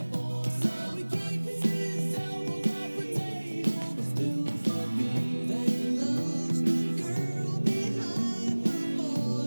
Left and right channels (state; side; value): inverted; both; correlation -1.00